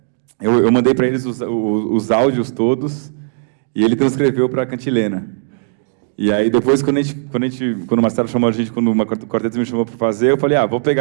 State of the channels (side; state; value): left; silent; digital silence